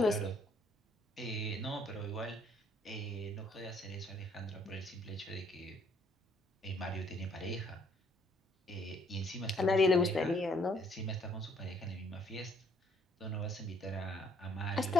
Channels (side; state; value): both; normal; correlation 0.64